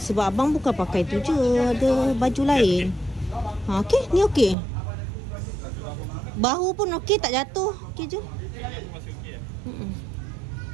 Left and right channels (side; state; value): left; drops out; at 4.5 s